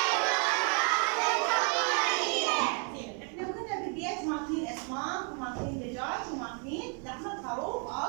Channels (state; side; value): quieter; left; 39.9 dB